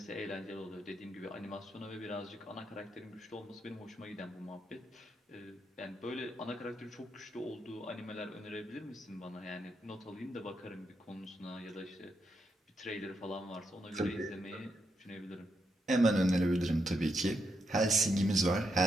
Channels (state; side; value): normal; both; correlation 0.81